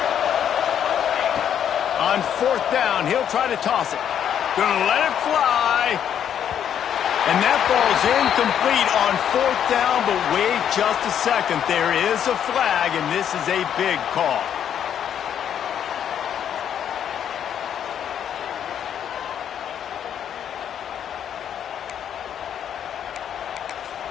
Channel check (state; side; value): quieter; right; 9.2 dB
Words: On 4th down, he'll try to toss it. Gonna let it fly. And that ball's incomplete on 4th down, but wait just a second. There is a flag, and this is a big call.